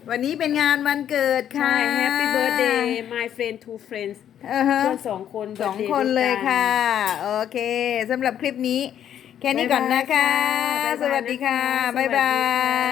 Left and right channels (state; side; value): quieter; right; 10.0 dB